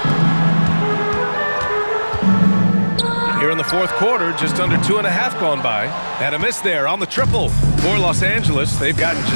Here in the fourth quarter, just under 2.5 gone by. And a miss there on the triple. For Los Angeles, they've gotten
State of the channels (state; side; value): inverted; both; correlation -1.00